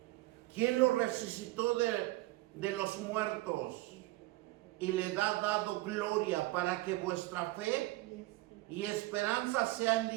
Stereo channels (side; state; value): left; quieter; 19.5 dB